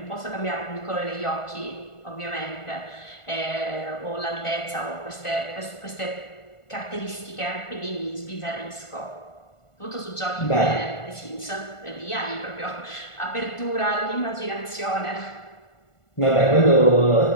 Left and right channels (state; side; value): late; right; 1.5 ms